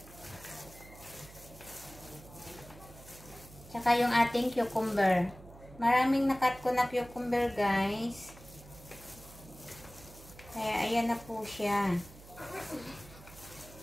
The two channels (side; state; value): right; noise; hum, 19 dB below the sound